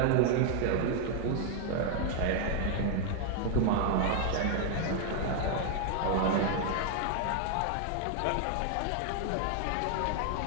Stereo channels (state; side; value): different; both; correlation 0.00